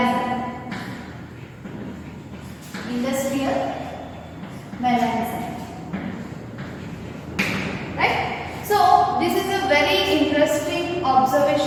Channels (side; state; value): both; identical; correlation 1.00